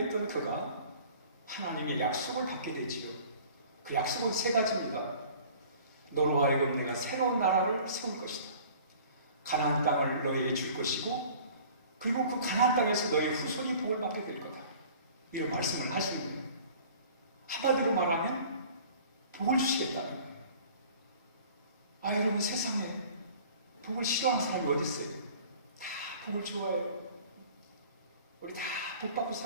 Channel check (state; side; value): inverted; both; correlation -0.47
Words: 그가 하나님의 약속을 받게 되지요. 그 약속은 세 가지입니다. 너로 하여금 내가 새로운 나라를 세울 것이다. 가나안 땅을 너에게 줄 것이고, 그리고 그 가나안 땅에서 너의 후손이 복을 받게 될 거다. 이런 말씀을 하시는 거예요. 한마디로 말하면 복을 주시겠다는 거예요. 여러분, 세상에 복을 싫어하는 사람이 어디 있어요? 다 복을 좋아해요. 우리 다 복 받고